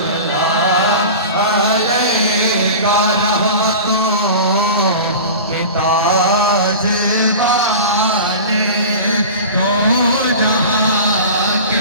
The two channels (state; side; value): inverted; both; correlation -0.34